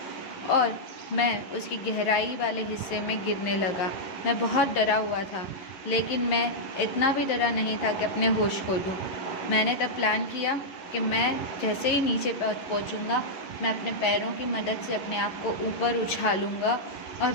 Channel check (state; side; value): late; right; 11 ms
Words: और मैं उसकी गहराई वाले हिस्से में गिरने लगा। मैं बहुत डरा हुआ था, लेकिन मैं इतना भी डरा नहीं था कि अपने होश खो दूँ। मैंने तब प्लान किया कि मैं जैसे ही नीचे पहुँचूँगा, मैं अपने पैरों की मदद से अपने आप को ऊपर उछालूँगा और